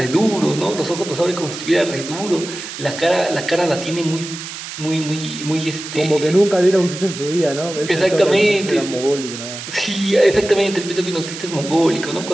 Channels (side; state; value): right; noise; hiss, 10 dB below the sound